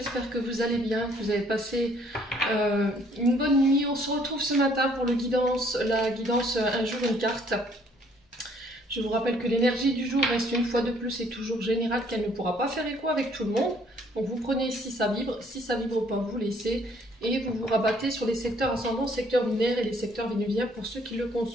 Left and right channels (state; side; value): normal; both; correlation 0.62